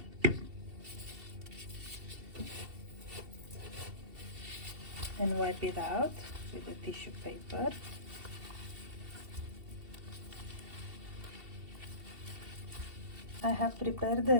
And wipe it out with a tissue paper. I have prepared the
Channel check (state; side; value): late; left; 2.7 ms